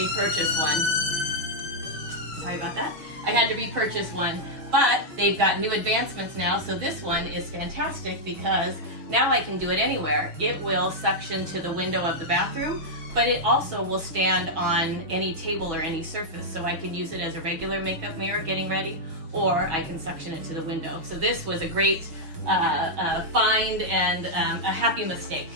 one. Sorry about that. I had to repurchase one. But they've got new advancements now, so this one is fantastic because now I can do it anywhere. It will suction to the window of the bathroom, but it also will stand on any table or any surface, so I can use it as a regular makeup mirror getting ready, or I can suction it to the window. So this was a great find and a happy mistake.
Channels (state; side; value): late; left; 6.2 ms